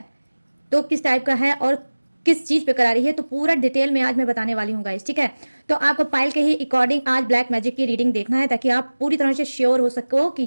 तो किस टाइप का है और किस चीज़ पे करा रही है, तो पूरा डिटेल में आज मैं बताने वाली हूँ गाइस, ठीक है। तो आपको पाइल के ही अकॉर्डिंग आज ब्लैक मैजिक की रीडिंग देखना है, ताकि आप पूरी तरह से श्योर हो सको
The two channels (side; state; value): both; inverted; correlation -1.00